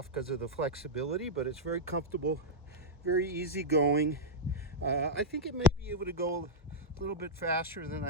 because of the flexibility, but it's very comfortable, very easy going. I think it may be able to go a little bit faster than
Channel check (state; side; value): normal; both; correlation -0.07